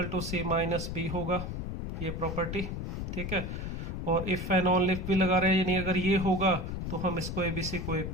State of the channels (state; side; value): noise; left; rumble, 4 dB below the sound